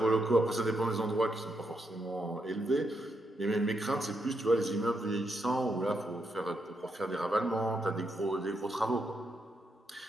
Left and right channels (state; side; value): normal; both; correlation 0.80